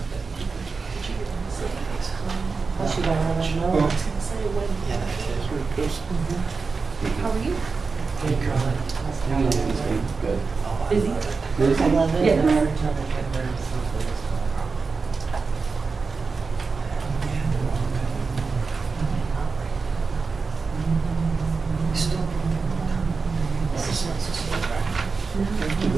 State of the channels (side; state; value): left; quieter; 4.6 dB